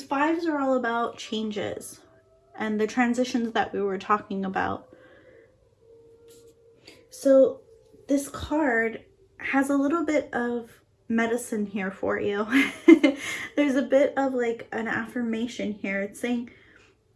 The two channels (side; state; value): both; identical; correlation 1.00